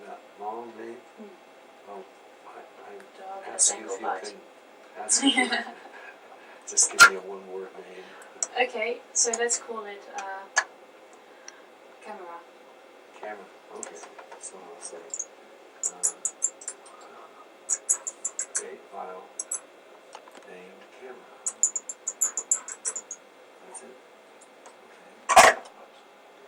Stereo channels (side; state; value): both; identical; correlation 1.00